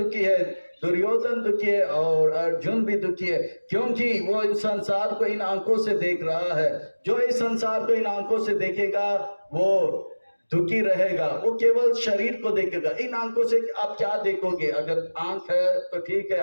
है, दुर्योधन दुखी है और अर्जुन भी दुखी है, क्योंकि वो इस संसार को इन आंखों से देख रहा है। जो इस संसार को इन आंखों से देखेगा वो दुखी रहेगा, वो केवल शरीर को देखेगा। इन आंखों से आप क्या देखोगे? अगर आंख है तो ठीक है,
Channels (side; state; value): both; inverted; correlation -1.00